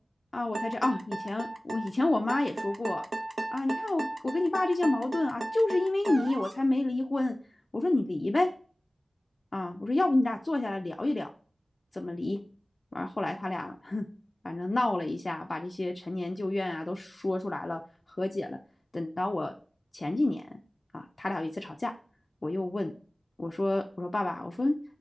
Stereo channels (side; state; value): both; normal; correlation 0.98